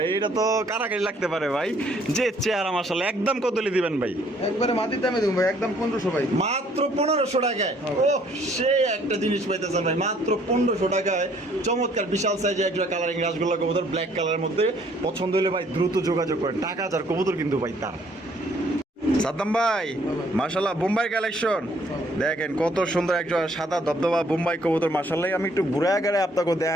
এটা তো কারাকারি লাগতে পারে ভাই। যে চেহারা মাশাআল্লাহ, একদম কত দিবেন ভাই? একবারে মাটির দামে দেবো ভাই, একদম 1500 ভাই। মাত্র 1500 টাকায়। ও সেই একটা জিনিস পাইতেছেন ভাই মাত্র 1500 টাকায়। চমৎকার বিশাল সাইজে একটা কালারিং রাসগোল্লা কবুতর, ব্ল্যাক কালারের মধ্যে। পছন্দ হলে ভাই দ্রুত যোগাযোগ করেন, টাকা যার কবুতর কিন্তু ভাই তার। সাদ্দাম ভাই, মাশাআল্লাহ বোম্বাই কালেকশন দেখেন কত সুন্দর একটা সাদা ধবধবা বোম্বাই কবুতর মাশাআল্লাহ। আমি একটু ঘুরে আগারে আপনাকে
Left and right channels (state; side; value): normal; both; correlation 0.63